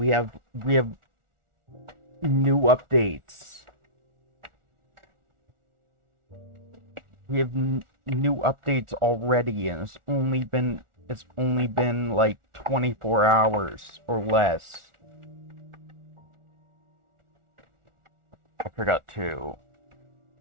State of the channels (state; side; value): late; left; 1.4 ms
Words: have new updates. We have new updates already and it's only been like 24 hours or less. I forgot to